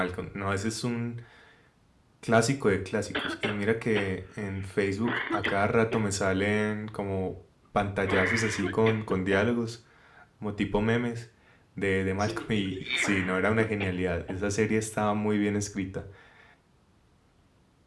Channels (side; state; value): both; identical; correlation 1.00